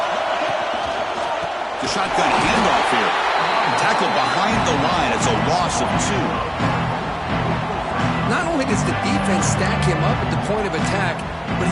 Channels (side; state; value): both; identical; correlation 1.00